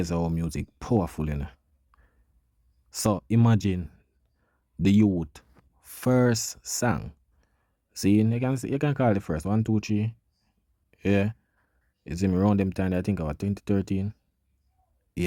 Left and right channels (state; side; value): identical; both; correlation 1.00